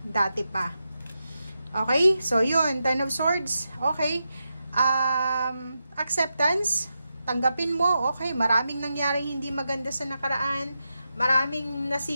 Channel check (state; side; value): inverted; both; correlation -0.88